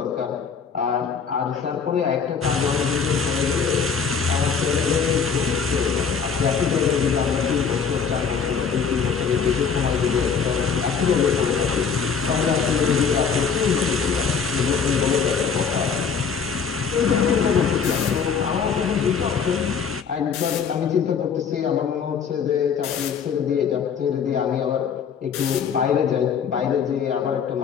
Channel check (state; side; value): quieter; right; 6.3 dB